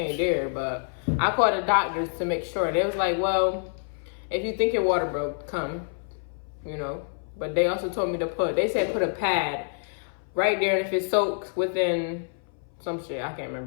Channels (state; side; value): silent; right; 59 dB below the other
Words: there. But I called the doctors to make sure. They was like, well, if you think your water broke, come. But they also told me to they said put a pad right there, and if it soaks within some shit, I can't